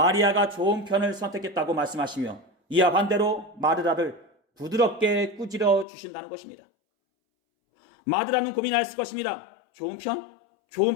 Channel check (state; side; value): drops out; right; at 5.9 s